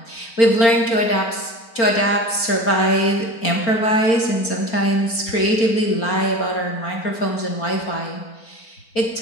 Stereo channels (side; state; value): right; late; 4.3 ms